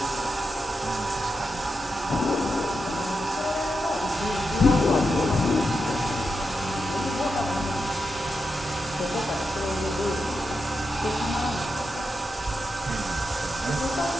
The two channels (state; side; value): normal; both; correlation 0.87